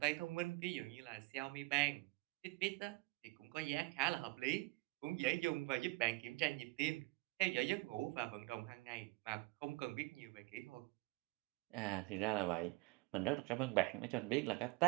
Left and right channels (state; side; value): quieter; left; 23.3 dB